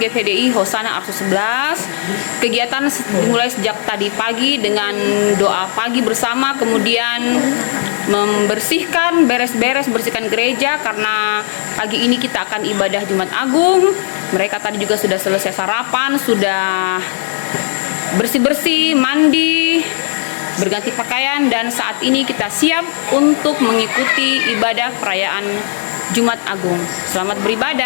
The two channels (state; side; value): silent; right; digital silence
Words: Hosana Arso 11. Kegiatan dimulai sejak tadi pagi dengan doa pagi bersama, kemudian membersihkan, bersihkan gereja karena pagi ini kita akan ibadah Jumat Agung. Mereka tadi juga sudah selesai sarapan, sudah bersih-bersih, mandi, berganti pakaian, dan saat ini kita siap untuk mengikuti ibadah perayaan Jumat Agung. Selamat